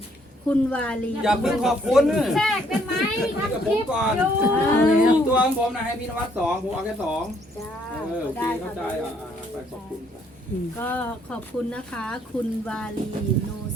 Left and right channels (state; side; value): normal; both; correlation 0.67